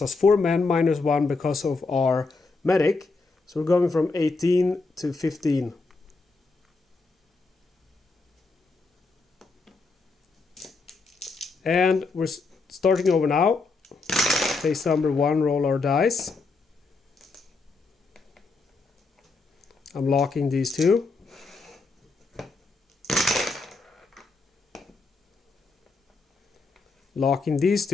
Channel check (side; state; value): right; quieter; 3.9 dB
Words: us 4 men minus 1 because of our medic. So we're going from 18 to 15. And we're starting over now. Phase number 1, roll our dice. I'm locking these two. Locking these